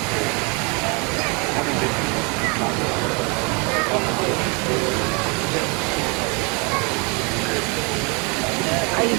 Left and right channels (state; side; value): quieter; left; 31.6 dB